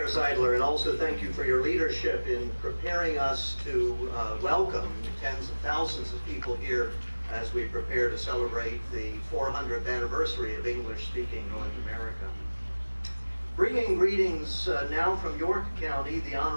Seidler, and also thank you for your leadership in preparing us to welcome tens of thousands of people here as we prepare to celebrate the 400th anniversary of English-speaking North America. Bringing greetings now from York County, the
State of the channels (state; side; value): inverted; both; correlation -1.00